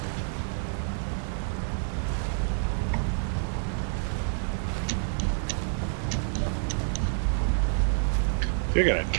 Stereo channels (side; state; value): left; silent; digital silence